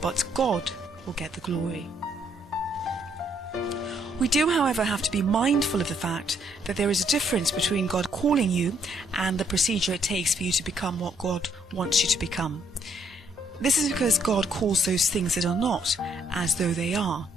but God will get the glory. We do, however, have to be mindful of the fact that there is a difference between God calling you and the procedure it takes for you to become what God wants you to become. This is because God calls those things that are not as though they are.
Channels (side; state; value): both; normal; correlation 0.70